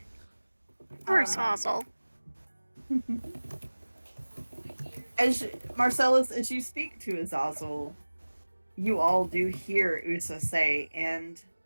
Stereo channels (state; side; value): inverted; both; correlation -1.00